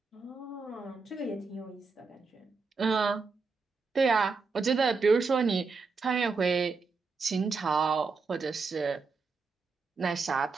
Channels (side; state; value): left; quieter; 4.5 dB